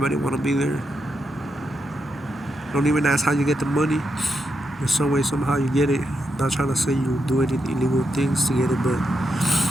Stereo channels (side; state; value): both; normal; correlation 0.83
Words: want to be there. Don't even ask how you get the money. In some way, somehow you get it. Not trying to say you do any illegal things to get it, but